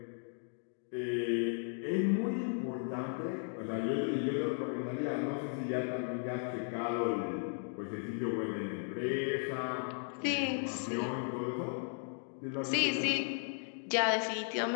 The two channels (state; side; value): silent; right; 54 dB below the other